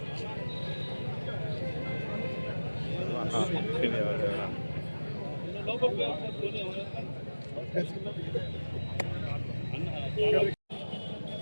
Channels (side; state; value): both; inverted; correlation -1.00